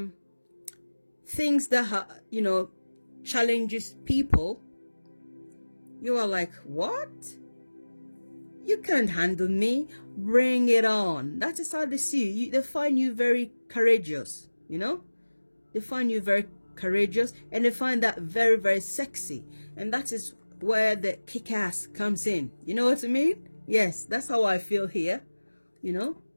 things that you know, challenges people, you are like, what? You can't handle me. Bring it on. That is how they see you. They find you very courageous, you know? They find you very courageous, and they find that very, very sexy. And that is where the kick-ass comes in. You know what I mean? Yes, that's how I feel here, you know?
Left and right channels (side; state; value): both; inverted; correlation -1.00